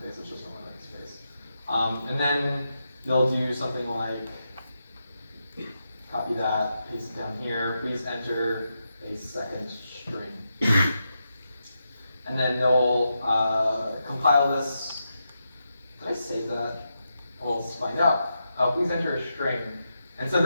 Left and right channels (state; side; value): inverted; both; correlation -0.86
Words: face, it's just a smiley face. And then they'll do something like, copy that, paste it down here, please enter a second string. And then they'll compile this. Did I save that? Well, let's find out. Please enter a string. And so